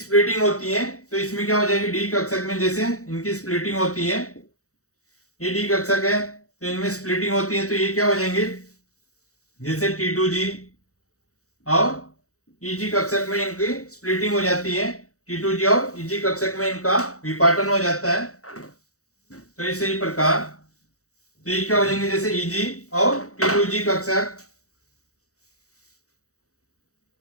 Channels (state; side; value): late; right; 0.65 ms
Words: होती है। तो इसमें क्या हो जाएगी, डी कक्षक में जैसे इनकी स्प्लिटिंग होती है, ये डी कक्षक है तो इनमें स्प्लिटिंग होती है। तो ये क्या हो जाएंगे, जैसे T2G और EG कक्षक में इनकी स्प्लिटिंग हो जाती है। T2G और EG कक्षक में इनका विपाटन हो जाता है। तो इसी प्रकार तो ये क्या हो जाएंगे, जैसे EG और T2G कक्षक।